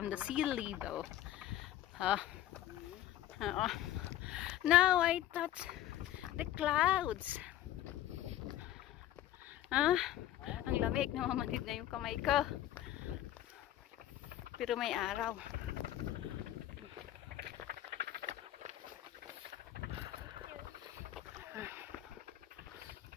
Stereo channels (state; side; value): quieter; right; 13.2 dB